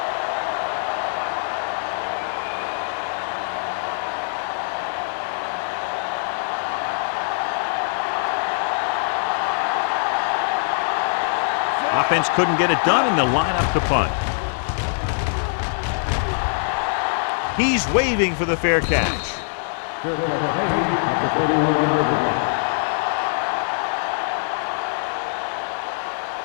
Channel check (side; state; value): right; silent; digital silence